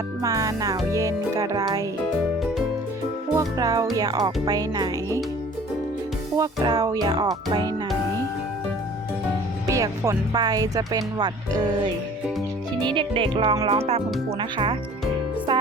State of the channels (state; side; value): normal; both; correlation 0.49